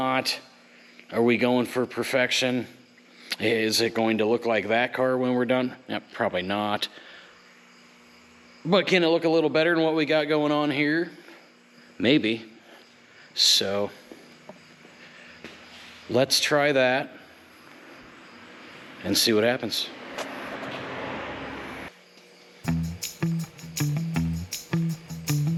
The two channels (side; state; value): both; identical; correlation 1.00